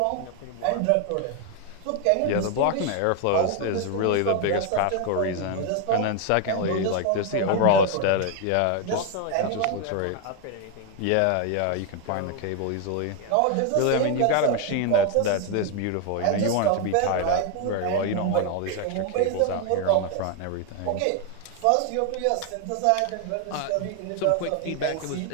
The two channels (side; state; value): both; different; correlation 0.01